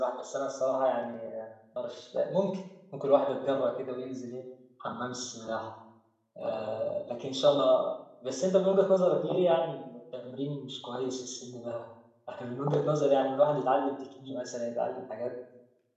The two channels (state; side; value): identical; both; correlation 1.00